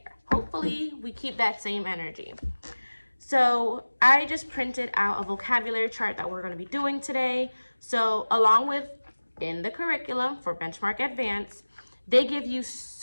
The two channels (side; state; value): both; inverted; correlation -1.00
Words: Hopefully, we keep that same energy. So I just printed out a vocabulary chart that we're going to be doing today. So along with in the curriculum for Benchmark Advance, they give you